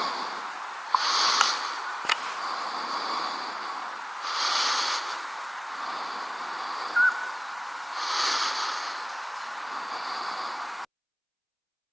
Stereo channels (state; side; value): identical; both; correlation 1.00